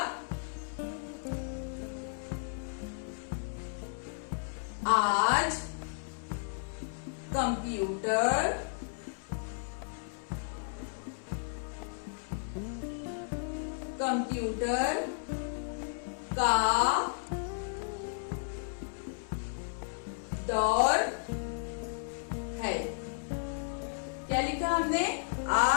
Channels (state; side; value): silent; right; 55 dB below the other